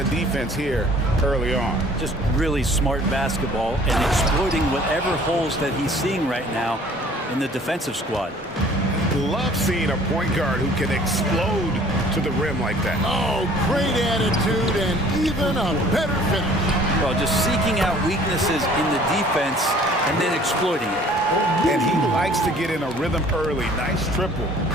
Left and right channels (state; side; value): normal; both; correlation 0.53